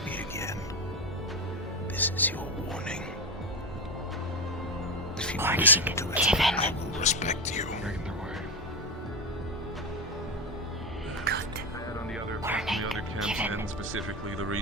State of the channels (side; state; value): both; normal; correlation 0.15